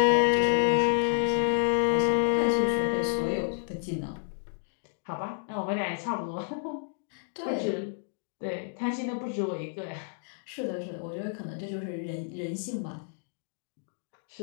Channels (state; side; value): silent; right; digital silence